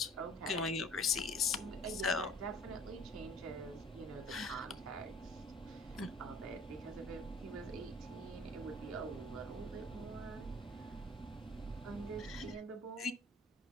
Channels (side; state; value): both; normal; correlation 0.51